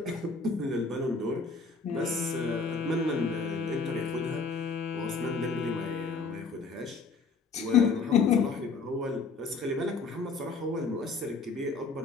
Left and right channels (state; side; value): quieter; right; 4.4 dB